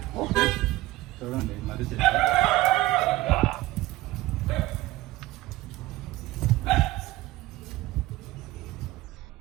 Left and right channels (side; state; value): left; quieter; 17.7 dB